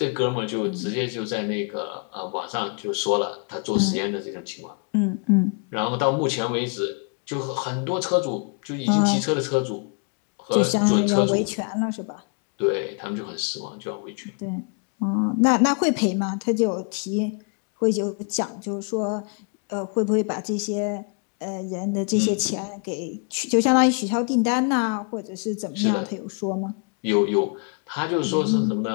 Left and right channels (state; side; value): quieter; right; 38.5 dB